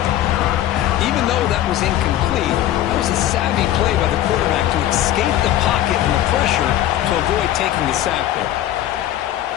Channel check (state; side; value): quieter; right; 13.0 dB